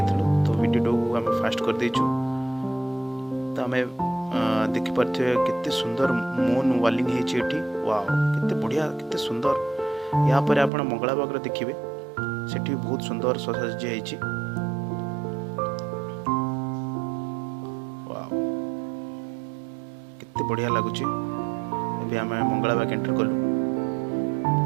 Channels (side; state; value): left; drops out; at 10.7 s